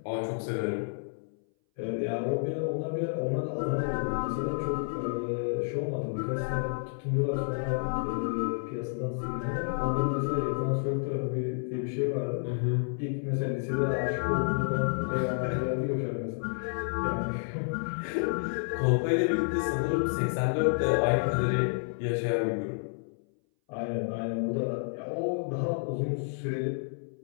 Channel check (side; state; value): right; silent; 58 dB below the other